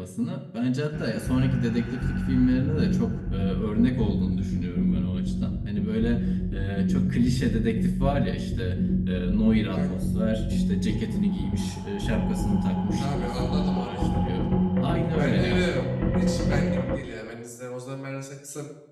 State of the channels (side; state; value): both; identical; correlation 1.00